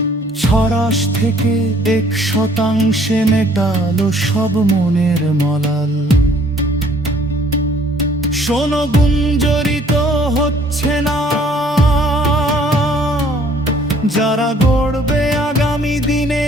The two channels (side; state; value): both; normal; correlation 0.60